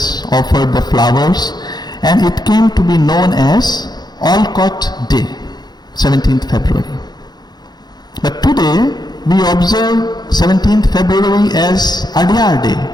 offered the flowers, and it came to be known as Olcott Day, 17th February. But today we observe 17th February as Adyar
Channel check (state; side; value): late; right; 0.20 ms